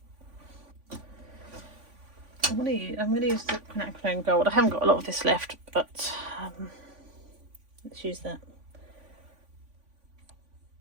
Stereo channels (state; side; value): late; left; 3.5 ms